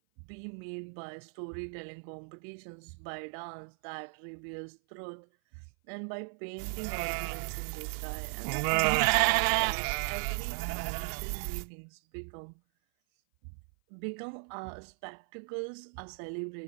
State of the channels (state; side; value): silent; left; 54 dB below the other